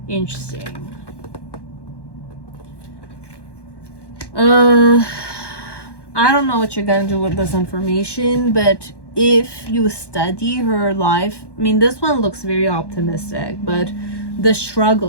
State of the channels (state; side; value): late; right; 1.1 ms